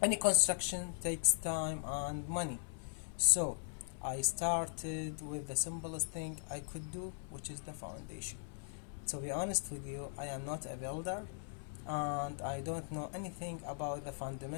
any construction takes time and money, so I started with the simplest thing I could do, which is the foundation. To be honest with you, I am not a builder and I don't know anything about the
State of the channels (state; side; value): silent; right; 52 dB below the other